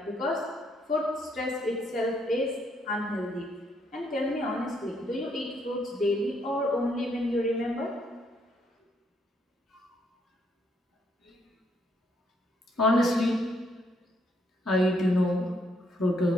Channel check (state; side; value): normal; both; correlation 0.72